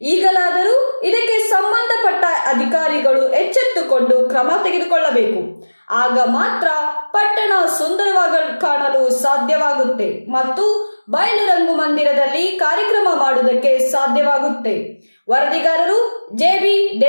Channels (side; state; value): both; inverted; correlation -1.00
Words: ಈಗಲಾದರೂ ಇದಕ್ಕೆ ಸಂಬಂಧಪಟ್ಟ ಅಧಿಕಾರಿಗಳು ಎಚ್ಚೆತ್ತುಕೊಂಡು ಕ್ರಮ ತೆಗೆದುಕೊಳ್ಳಬೇಕು. ಆಗ ಮಾತ್ರ ಪಟ್ಟಣ ಸುಂದರವಾಗಿ ಕಾಣಲು ಸಾಧ್ಯವಾಗುತ್ತೆ ಮತ್ತು ಬಯಲು ರಂಗಮಂದಿರದಲ್ಲಿ ಕಾರ್ಯಕ್ರಮ ಮಾಡುವುದಕ್ಕೆ ಸಾಧ್ಯವಾಗುತ್ತೆ. ವರದಿಗಾರರು JB